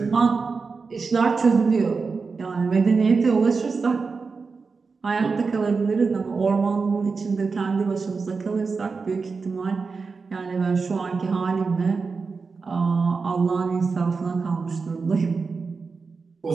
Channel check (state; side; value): quieter; left; 4.7 dB